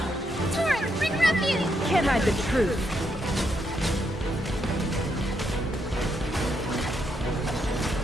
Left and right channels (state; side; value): normal; both; correlation 0.78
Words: Torrent, bring refuge! Can't hide the truth.